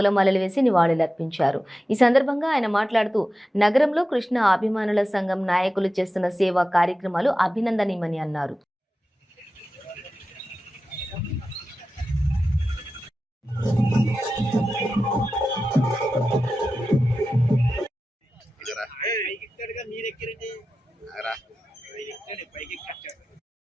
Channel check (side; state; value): both; normal; correlation 0.93